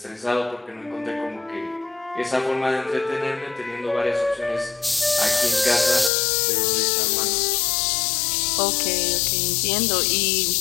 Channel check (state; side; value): drops out; right; at 6.1 s